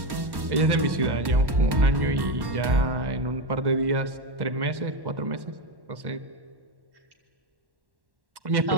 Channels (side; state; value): left; late; 1.1 ms